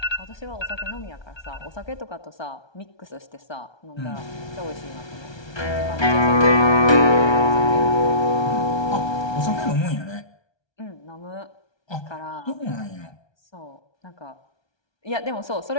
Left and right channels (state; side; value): late; right; 1.3 ms